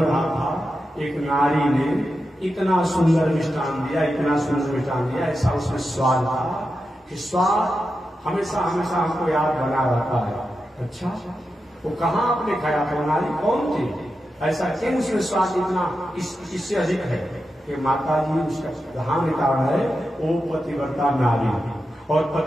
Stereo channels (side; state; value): both; normal; correlation 0.89